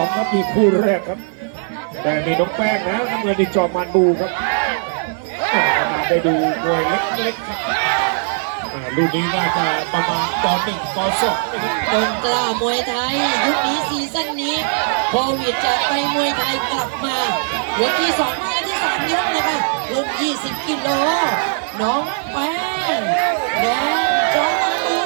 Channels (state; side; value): silent; left; 65 dB below the other